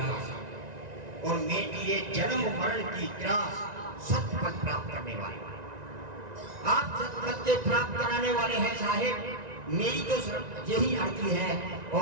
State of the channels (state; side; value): late; left; 1.9 ms